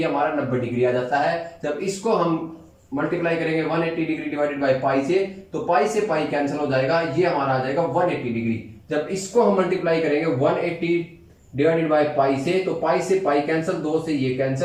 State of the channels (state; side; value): identical; both; correlation 1.00